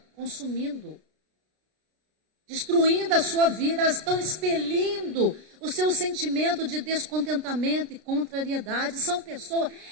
consumindo, destruindo a sua vida. Elas estão expelindo o seu sentimento de descontentamento e contrariedade. São pessoas,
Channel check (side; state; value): left; late; 33 ms